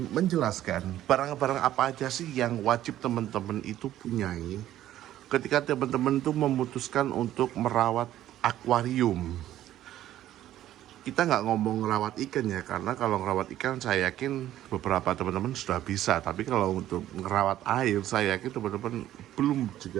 menjelaskan barang-barang apa aja sih yang wajib teman-teman itu punyai ketika teman-teman itu memutuskan untuk merawat akuarium. Kita nggak ngomong ngerawat ikan ya, karena kalau ngerawat ikan saya yakin beberapa teman-teman sudah bisa, tapi kalau untuk ngerawat air saya yakin teman-teman belum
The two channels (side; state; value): left; quieter; 12.9 dB